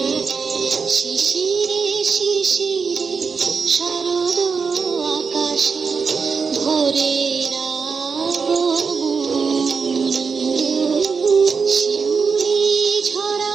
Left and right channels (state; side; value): quieter; left; 5.4 dB